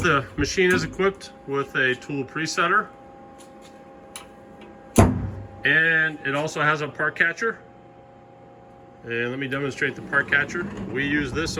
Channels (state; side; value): identical; both; correlation 1.00